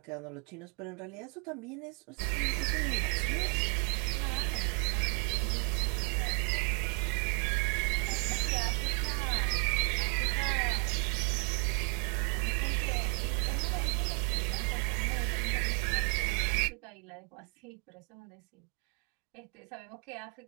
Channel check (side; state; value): left; quieter; 37.3 dB